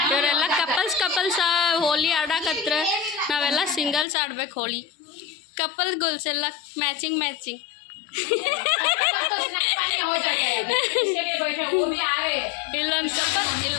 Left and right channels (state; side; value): drops out; right; at 4.0 s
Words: ಇವರೆಲ್ಲ ಕಪಲ್ಸ್ ಹೋಲಿ ಆಡಕತ್ರ. ನಾವೆಲ್ಲ ಸಿಂಗಲ್ಸ್ ಆಡ್ಬೇಕು ಹೋಳಿ. ಕಪಲ್ ಗೋಲ್ಸ್ ಎಲ್ಲ ಮ್ಯಾಚಿಂಗ್ ಇಲ್ಲೊಂದು